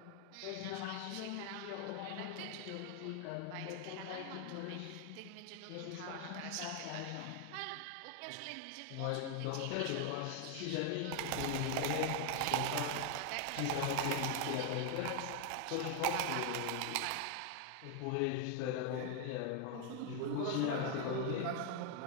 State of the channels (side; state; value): both; different; correlation 0.00